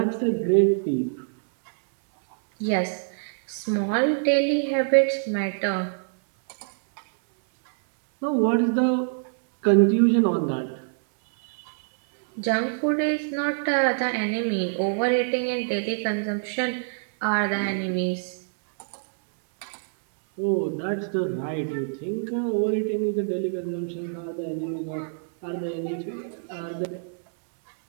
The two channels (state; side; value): silent; left; 62 dB below the other